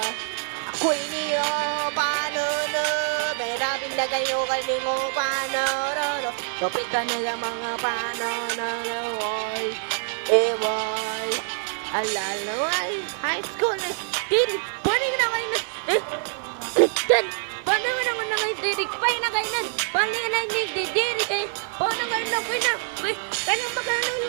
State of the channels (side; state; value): left; silent; digital silence